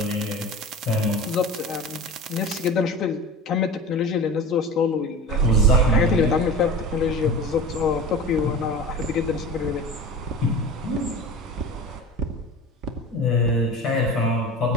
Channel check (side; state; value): both; normal; correlation 0.33